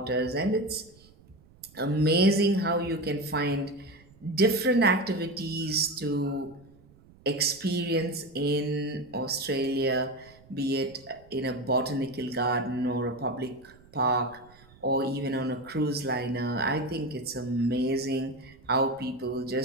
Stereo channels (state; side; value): noise; right; rumble, 26 dB below the sound